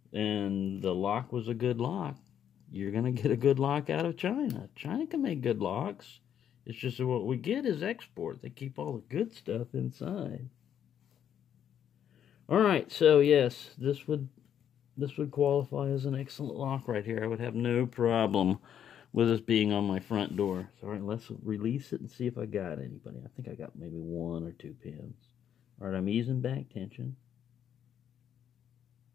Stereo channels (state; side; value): quieter; right; 9.4 dB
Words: and the lock was a good lock, you're going to get a good lock out of China. China can make good locks. It's just that what we get is export. They keep all the good stuff inside. Alright, so yes, this would qualify as an excellent lock right here. I would have no problem with this being on my front door. So alright, let's release it and see if I got anybody. I think I got maybe 1 or 2 pins. Alright, I'm easing back tension.